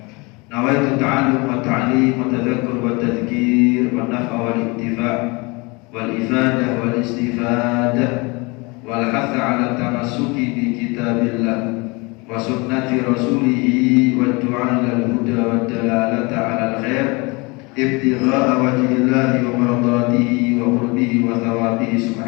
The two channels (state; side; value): quieter; right; 27.0 dB